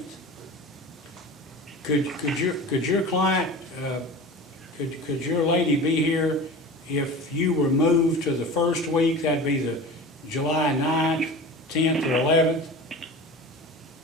Could your client, could your lady be here if you were moved to the first week? That'd be the July 9th, 10th, or 11th?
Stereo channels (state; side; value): normal; both; correlation 0.34